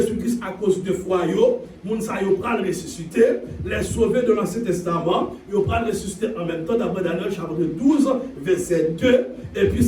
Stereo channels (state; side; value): identical; both; correlation 1.00